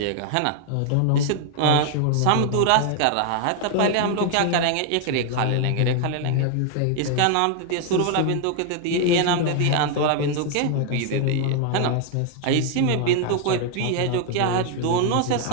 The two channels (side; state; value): both; different; correlation 0.00